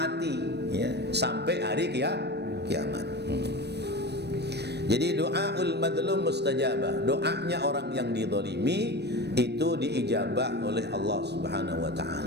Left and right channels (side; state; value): left; late; 0.49 ms